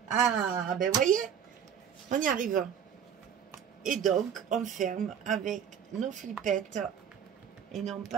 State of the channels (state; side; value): quieter; left; 8.2 dB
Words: Ah, ben voyez, on y arrive. Et donc, on ferme avec nos flippettes et non